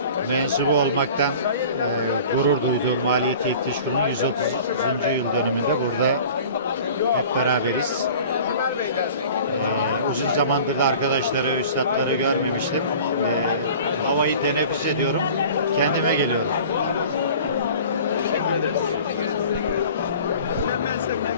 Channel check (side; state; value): both; inverted; correlation -0.44